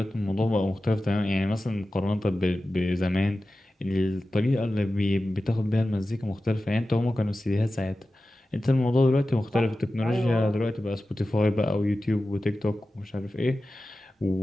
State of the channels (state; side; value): normal; both; correlation 0.94